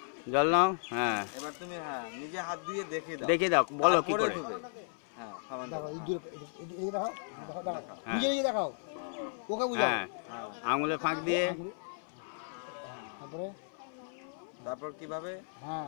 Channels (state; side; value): silent; right; 55 dB below the other